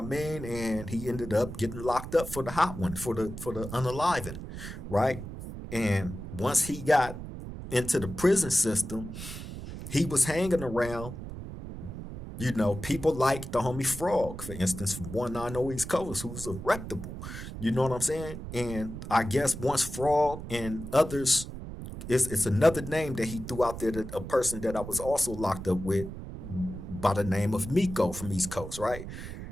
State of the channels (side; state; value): right; noise; rumble, 9 dB below the sound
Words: mean? And he ended up getting locked up for the hot one, for the unaliving, right? And once he got into the prison system, he was hanging around, people like the homie Frog, for instance, from 190 East Coast, who's a reputable. You know what I'm saying? And I guess once Frog and others, it's another name that he threw out there, that a person that I was also locked up with by the name of Miko from East Coast, right?